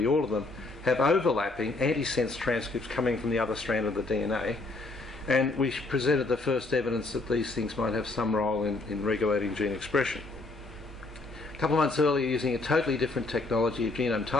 all of them, have overlapping antisense transcripts coming from the other strand of the DNA, and we presented the first evidence that these things might have some role in regulating gene expression. A couple of months earlier, using a totally different technology of genome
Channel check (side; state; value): right; quieter; 3.2 dB